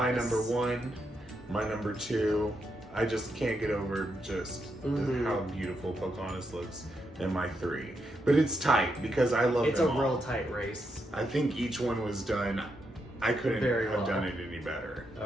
number one, my number two. I just can't get over just how beautiful Pocahontas looks in my three. But it's tight because I love It's them a all. real tight race. I think each one was done. I couldn't Very have well. done it any better.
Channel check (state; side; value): normal; both; correlation 0.82